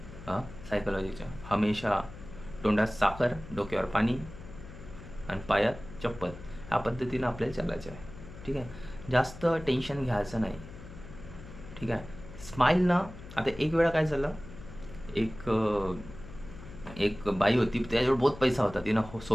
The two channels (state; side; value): noise; left; hum, 15 dB below the sound